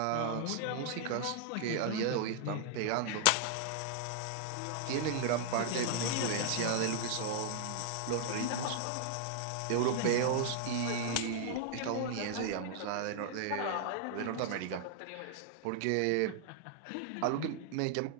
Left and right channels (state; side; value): different; both; correlation -0.01